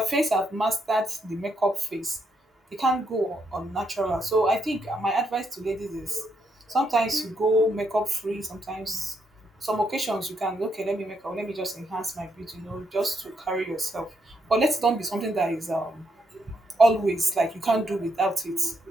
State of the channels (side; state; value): both; normal; correlation 0.78